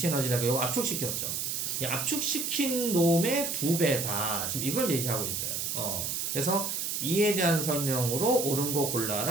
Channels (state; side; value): noise; right; hiss, 2 dB below the sound